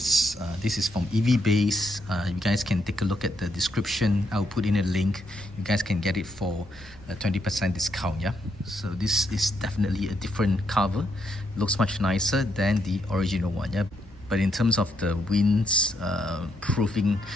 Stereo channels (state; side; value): normal; both; correlation 0.77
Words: This is from EV Base. You guys can take a look at the description. I'll put in a link. You guys can get it for a 20% discount. Yeah. So this is definitely a different cover. Looks much nicer than the original one. Yeah. But in terms of the winds proofing,